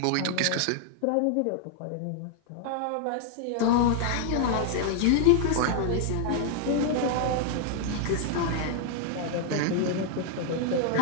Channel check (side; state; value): both; different; correlation 0.00